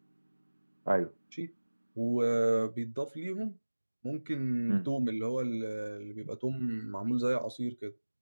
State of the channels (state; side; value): inverted; both; correlation -1.00